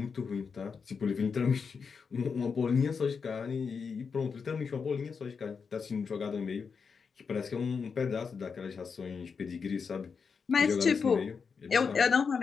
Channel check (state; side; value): quieter; right; 5.6 dB